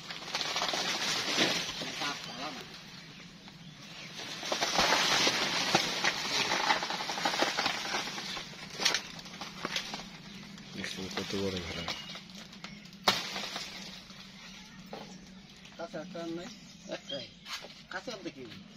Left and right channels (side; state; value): both; identical; correlation 1.00